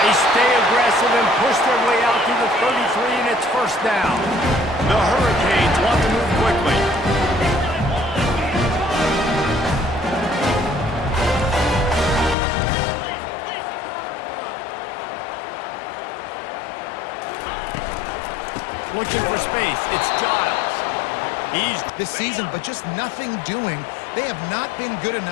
They stay aggressive and push their way out to the 33, and it's 1st down. The Hurricanes want to move quickly. Looking for space. It's Giles. He's this season, but just nothing doing. They have not been good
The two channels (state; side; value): drops out; right; at 12.4 s